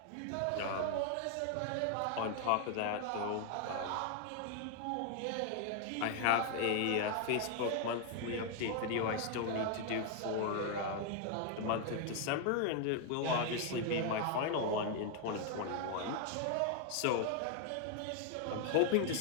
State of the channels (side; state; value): both; different; correlation 0.00